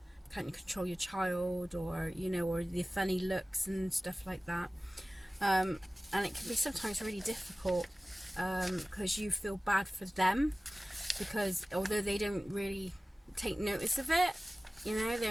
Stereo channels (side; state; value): both; normal; correlation 0.97